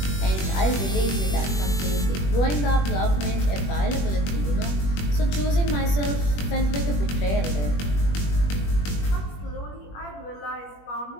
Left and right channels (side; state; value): right; late; 21 ms